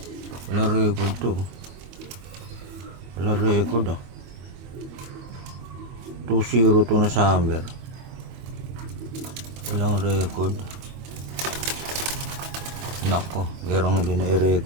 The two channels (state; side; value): late; left; 22 ms